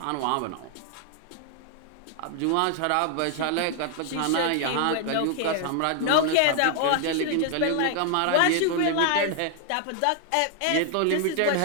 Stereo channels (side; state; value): both; different; correlation 0.00